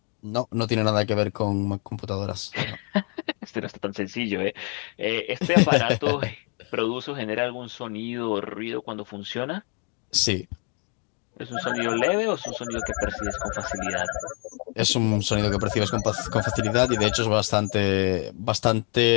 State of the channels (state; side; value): quieter; right; 37.4 dB